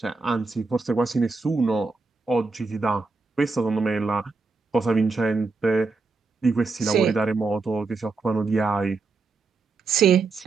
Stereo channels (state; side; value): quieter; left; 4.0 dB